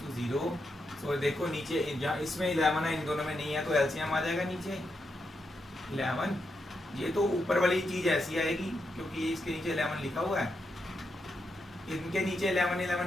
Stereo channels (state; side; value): normal; both; correlation 0.84